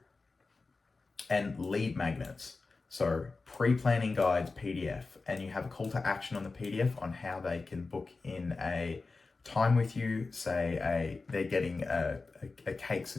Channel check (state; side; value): quieter; right; 3.9 dB